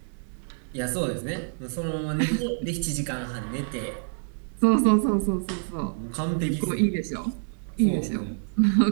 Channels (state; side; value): silent; left; 60 dB below the other